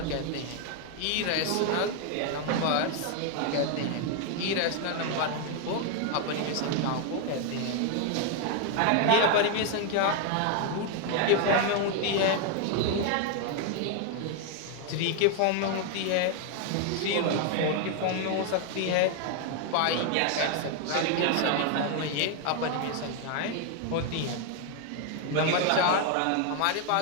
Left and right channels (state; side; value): different; both; correlation 0.01